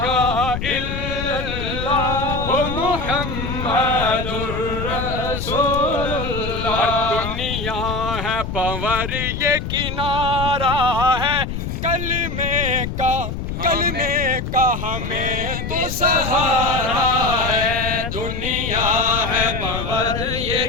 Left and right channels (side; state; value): left; noise; rumble, 5 dB below the sound